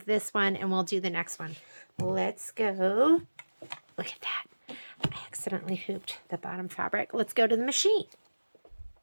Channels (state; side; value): inverted; both; correlation -1.00